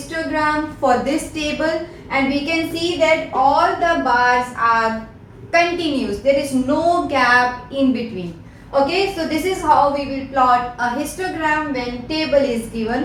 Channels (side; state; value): both; identical; correlation 1.00